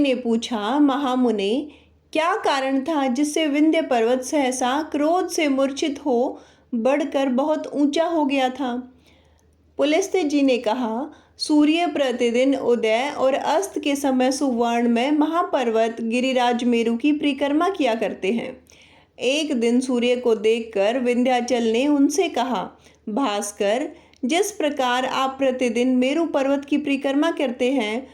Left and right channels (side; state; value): both; identical; correlation 1.00